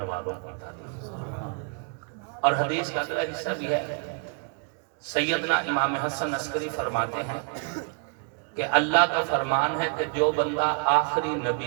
والوں کی تعریف۔ اور حدیث کا اگلا حصہ بھی ہے، سیدنا امام حسن عسکری فرماتے ہیں کہ اللہ کا فرمان ہے کہ جو بندہ آخری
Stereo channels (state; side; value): quieter; left; 39.3 dB